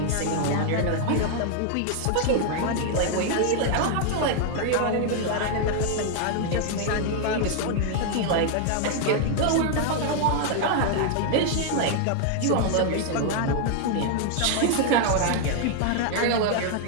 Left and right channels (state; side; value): different; both; correlation 0.00